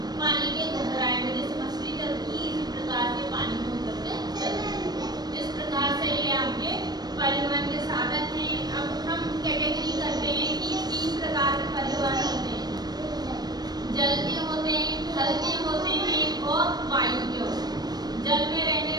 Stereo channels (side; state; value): left; late; 0.19 ms